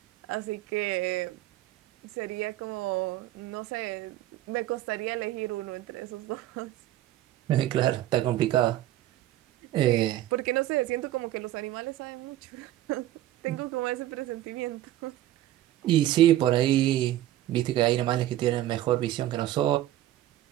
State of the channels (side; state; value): left; quieter; 14.1 dB